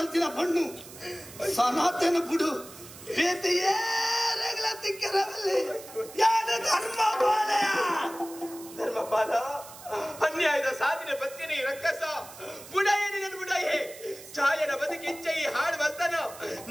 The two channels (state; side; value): noise; right; hiss, 17 dB below the sound